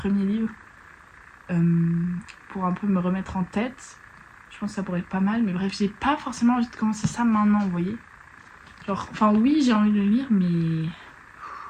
livres pour un peu me remettre en tête. Je pense que ça pourrait être pas mal, mais bref j'ai pas forcément envie de commencer ça maintenant, vous voyez. Genre, enfin oui j'ai envie de le lire mais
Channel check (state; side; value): identical; both; correlation 1.00